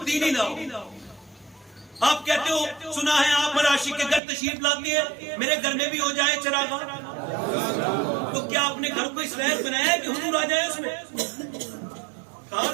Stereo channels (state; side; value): drops out; left; at 4.2 s